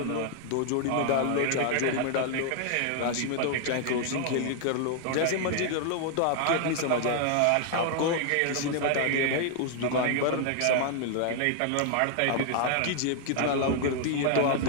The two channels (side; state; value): both; different; correlation 0.00